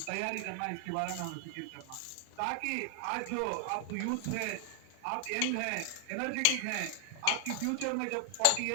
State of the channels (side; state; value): both; different; correlation 0.00